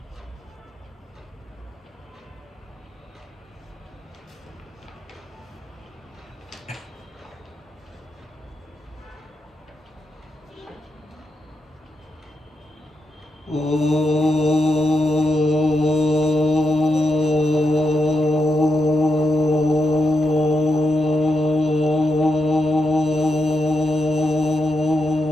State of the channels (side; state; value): both; normal; correlation 0.84